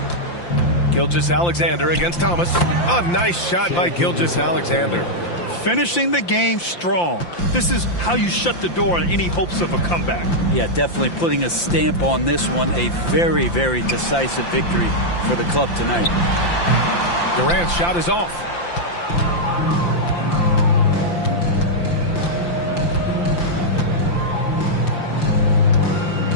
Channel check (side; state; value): right; late; 5.8 ms